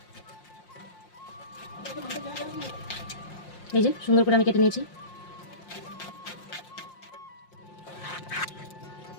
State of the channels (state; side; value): late; right; 5.7 ms